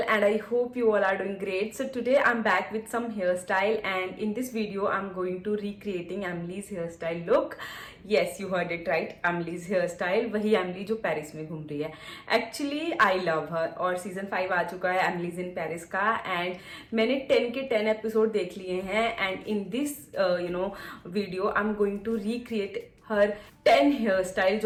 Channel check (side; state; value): both; identical; correlation 1.00